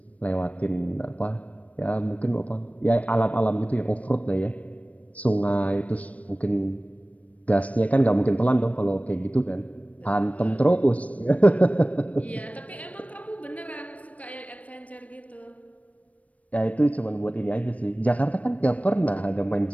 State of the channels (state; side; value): late; right; 0.067 ms